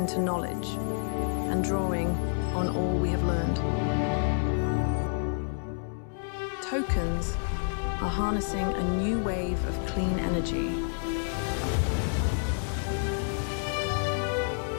knowledge and drawing on all we have learned. Tokens are harnessing a new wave of clean energy.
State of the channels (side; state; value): right; silent; digital silence